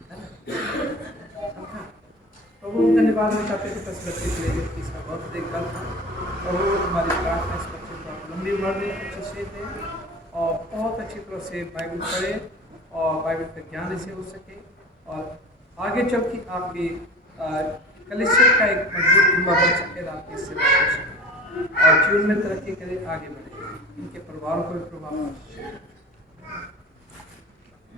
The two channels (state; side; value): normal; both; correlation 0.36